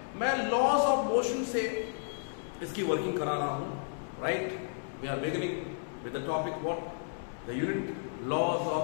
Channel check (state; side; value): silent; right; digital silence